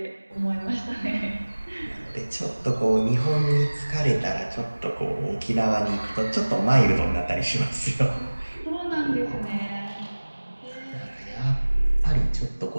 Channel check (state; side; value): inverted; both; correlation -1.00